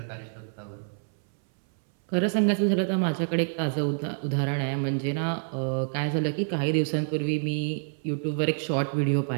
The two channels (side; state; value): left; silent; 60 dB below the other